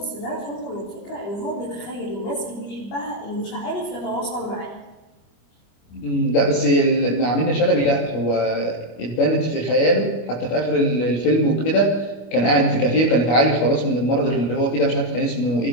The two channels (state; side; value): late; right; 25 ms